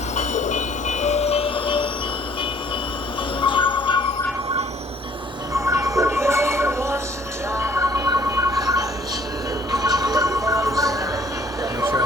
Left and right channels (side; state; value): both; normal; correlation 0.59